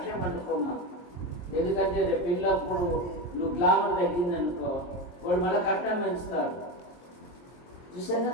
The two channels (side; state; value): right; late; 23 ms